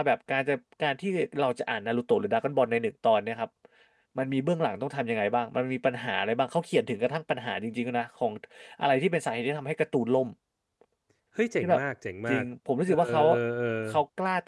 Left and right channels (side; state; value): both; identical; correlation 1.00